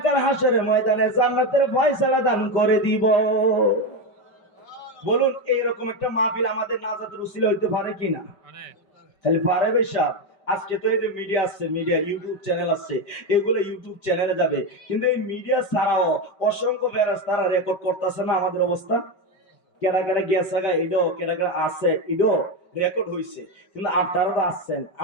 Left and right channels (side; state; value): right; late; 5.2 ms